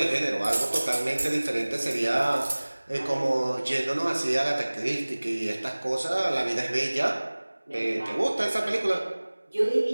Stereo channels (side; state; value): both; inverted; correlation -1.00